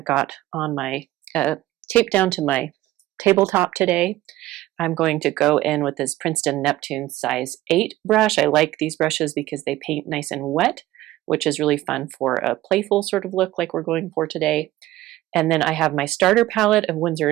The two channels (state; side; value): quieter; left; 16.1 dB